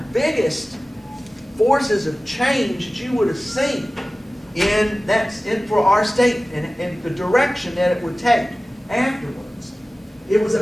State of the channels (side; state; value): both; normal; correlation 0.97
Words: biggest forces of change that you would have seen for our state and the direction that it would take afterwards. It was